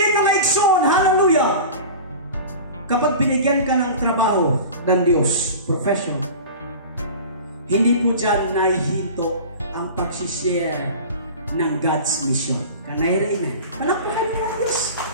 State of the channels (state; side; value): inverted; both; correlation -0.35